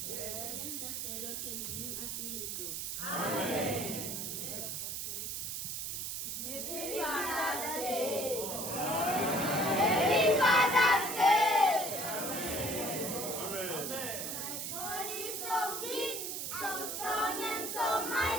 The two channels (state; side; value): noise; right; hiss, 4 dB below the sound